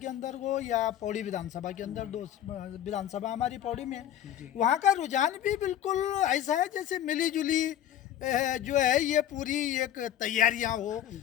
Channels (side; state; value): right; quieter; 11.4 dB